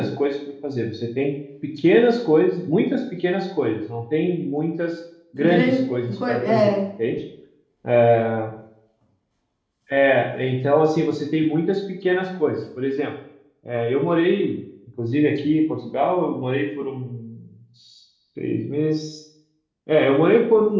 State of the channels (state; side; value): identical; both; correlation 1.00